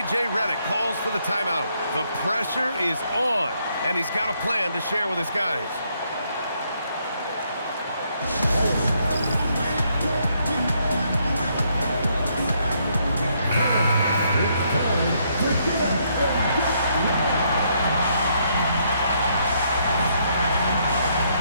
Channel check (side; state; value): both; inverted; correlation -0.73